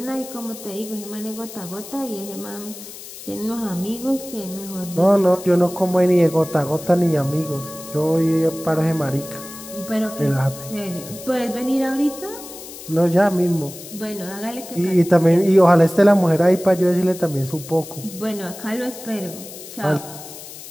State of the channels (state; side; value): noise; left; hiss, 14 dB below the sound